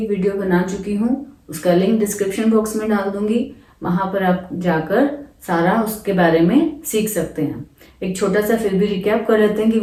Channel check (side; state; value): both; identical; correlation 1.00